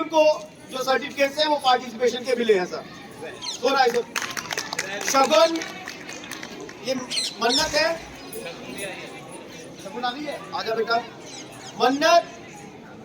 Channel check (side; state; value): both; identical; correlation 1.00